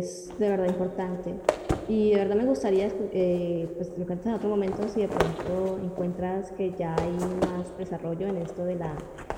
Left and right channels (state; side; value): identical; both; correlation 1.00